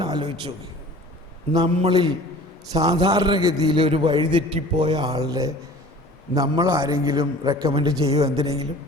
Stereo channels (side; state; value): both; normal; correlation 0.45